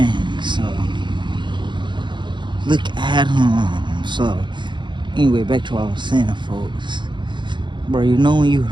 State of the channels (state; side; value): late; left; 0.23 ms